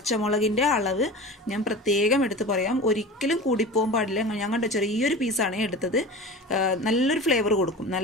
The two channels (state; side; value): normal; both; correlation 0.33